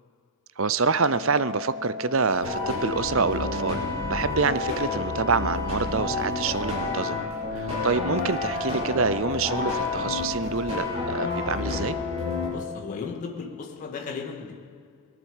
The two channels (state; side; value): normal; both; correlation -0.12